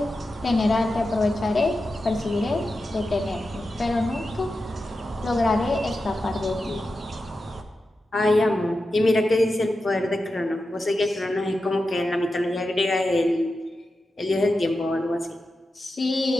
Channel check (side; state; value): both; normal; correlation 0.91